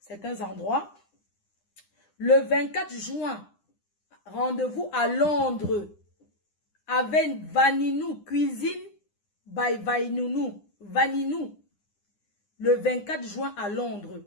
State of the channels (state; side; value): late; right; 9.8 ms